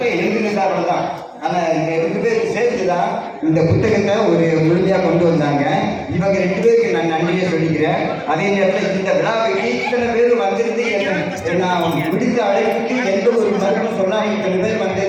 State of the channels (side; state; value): both; identical; correlation 1.00